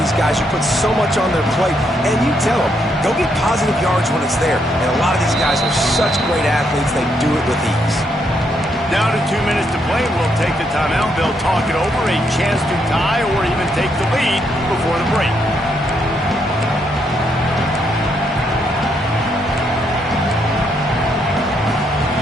guys. You put so much on their plate, and you tell them, go get positive yards when it's there. And a lot of these guys are such great athletes, they do it with ease. Down to 2 minutes to play. We'll take the timeout. They'll talk it over, a chance to tie or even take the lead before the break.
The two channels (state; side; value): normal; both; correlation 0.76